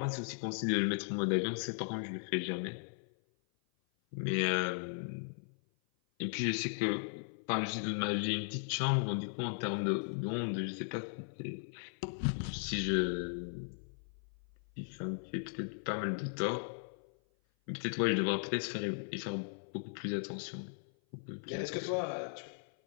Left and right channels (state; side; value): silent; right; 53 dB below the other